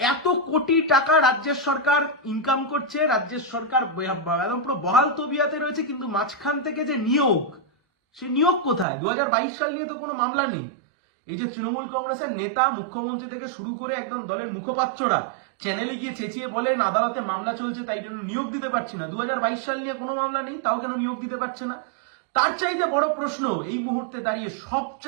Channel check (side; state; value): left; drops out; at 8.8 s